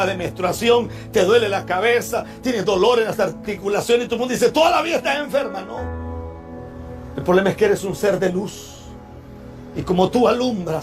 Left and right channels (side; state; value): both; identical; correlation 1.00